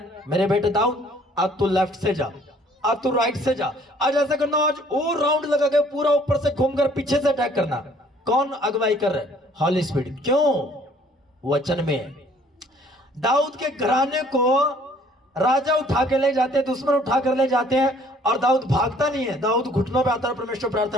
मेरे बेटे दाऊद, अब तू लेफ्ट से जा, अब तू राइट से जा, आज ऐसा करना, आज और राउंड लगा के पूरा ऊपर से घूमकर पीछे से अटैक करना। कौन अगुवाई कर रहा है? हॉली स्पिरिट। क्यों? वचन में। दाऊद के घराने को राजा उठा के ले जाते हैं, दुश्मन उठा कर ले जाते हैं, और दाऊद भागता नहीं है। दाऊद घुटनों पे आता है, परमेश्वर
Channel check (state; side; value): normal; both; correlation 0.58